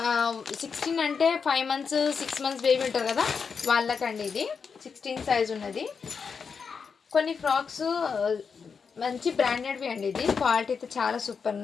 అంటే 5 మంత్స్ 6 మంత్స్ బేబీ ఉంటారు కదా వాళ్ళకండి. ఇది 16 సైజ్ ఉన్నది. కొన్ని ఫ్రాక్స్ మంచి బ్రాండెడ్వి అండి, ఇది క్వాలిటీ అయితే చాలా సూపర్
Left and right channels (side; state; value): right; quieter; 5.8 dB